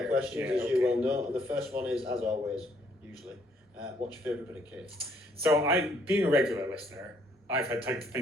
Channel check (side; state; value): both; normal; correlation 0.67